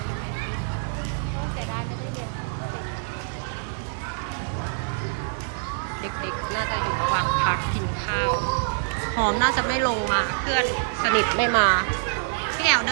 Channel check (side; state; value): left; silent; digital silence